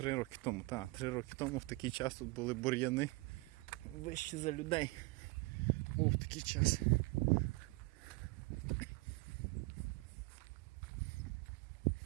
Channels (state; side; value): quieter; left; 24.2 dB